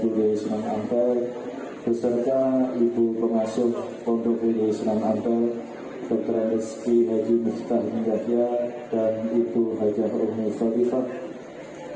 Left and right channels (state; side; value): identical; both; correlation 1.00